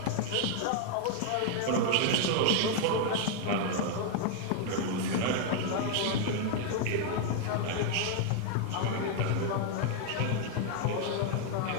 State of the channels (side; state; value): both; different; correlation 0.00